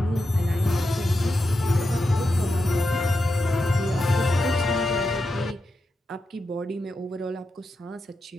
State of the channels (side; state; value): both; normal; correlation 0.88